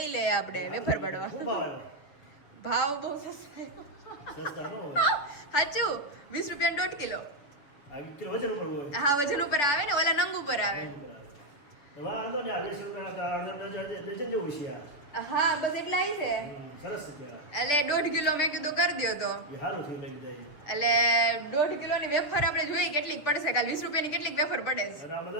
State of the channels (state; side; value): late; right; 6.9 ms